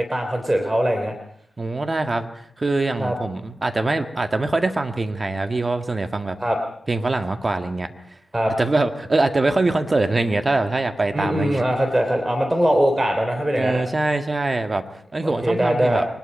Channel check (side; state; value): both; normal; correlation 0.95